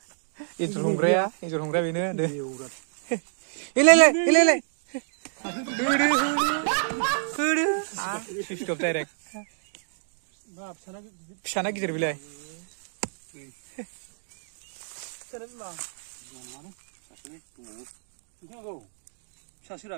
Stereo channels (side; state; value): left; silent; digital silence